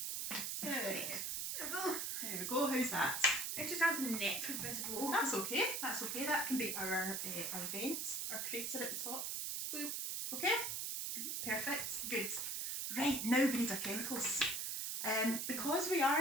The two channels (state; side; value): noise; right; hiss, 1 dB below the sound